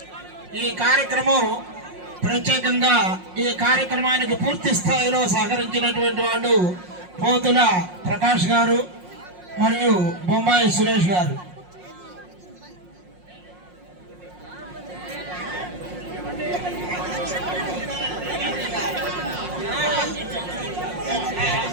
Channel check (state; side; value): late; left; 5.5 ms